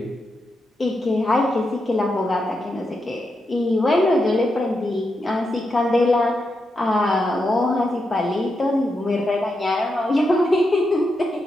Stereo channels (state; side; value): normal; both; correlation 0.85